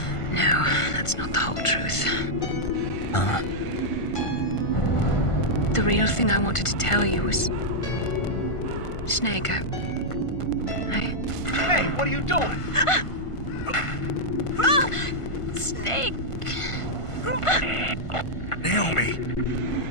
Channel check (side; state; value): right; late; 1.5 ms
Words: No, that's not the whole truth. Huh? The real thing I wanted to tell you was... Snake, I... Hey, what are you doing? Snake! Naomi!